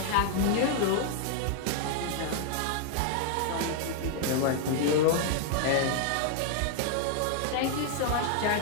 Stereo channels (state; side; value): different; both; correlation 0.00